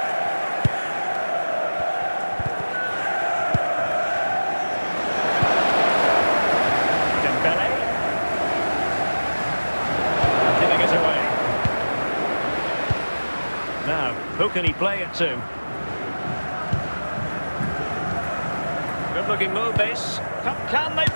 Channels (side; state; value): both; inverted; correlation -1.00